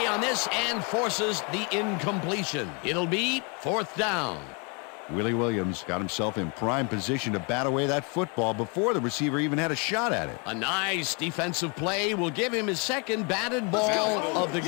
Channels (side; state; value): right; quieter; 33.9 dB